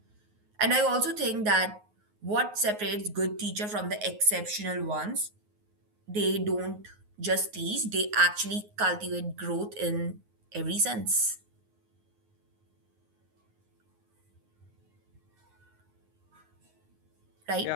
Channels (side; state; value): left; late; 9.5 ms